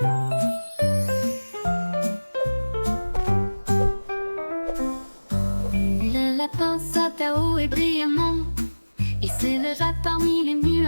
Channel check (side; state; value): both; inverted; correlation -1.00